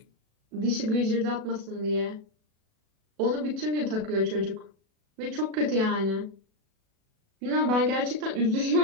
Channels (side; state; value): left; late; 37 ms